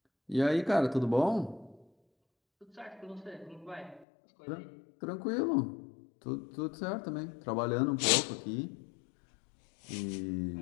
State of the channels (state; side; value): drops out; right; at 4.0 s